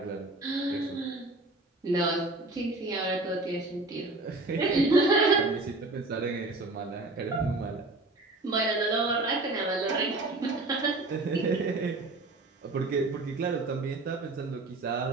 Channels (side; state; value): left; quieter; 3.1 dB